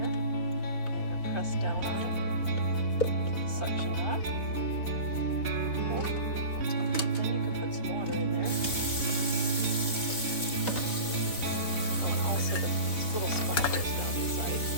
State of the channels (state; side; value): late; right; 3.8 ms